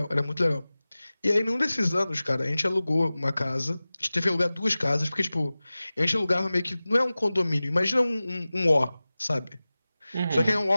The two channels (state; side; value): inverted; both; correlation -0.97